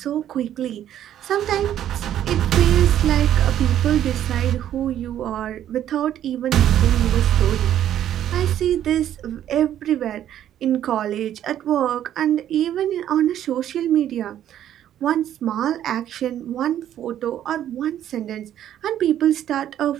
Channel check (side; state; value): left; quieter; 11.1 dB